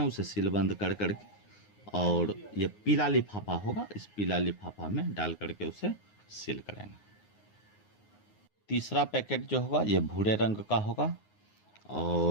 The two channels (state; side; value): late; right; 9.6 ms